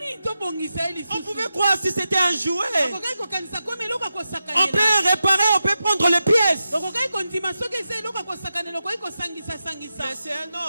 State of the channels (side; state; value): both; inverted; correlation -0.89